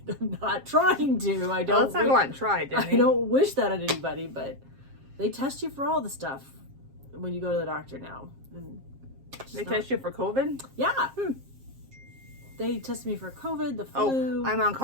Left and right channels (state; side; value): late; left; 7.5 ms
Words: I'm not trying to. I don't. Let's not go out and try, Danny. I don't wish that on anybody, but they test you for all the stuff when you go to the doctor now. And They test you for COVID? Yeah. They tested me for COVID, the flu. Oh, I'm on